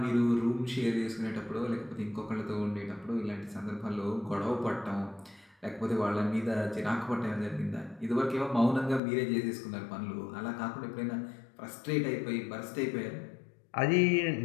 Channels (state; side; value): drops out; right; at 9.0 s